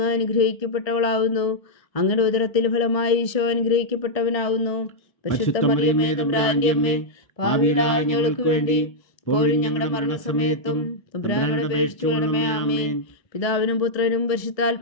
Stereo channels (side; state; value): right; late; 1.7 ms